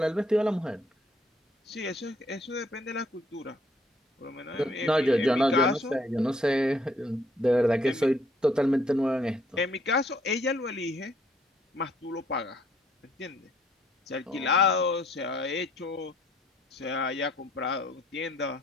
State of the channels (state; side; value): normal; both; correlation 0.65